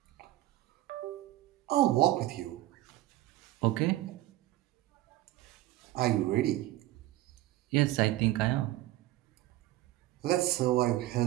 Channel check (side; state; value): left; quieter; 15.9 dB